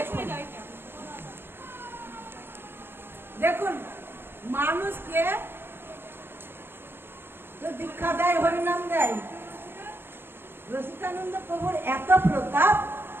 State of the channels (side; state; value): left; late; 0.11 ms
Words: দেখুন, মানুষকে তো দীক্ষা দেয়, হরিনাম দেয়। রসিকানন্দ প্রভুর এত প্রতাপ,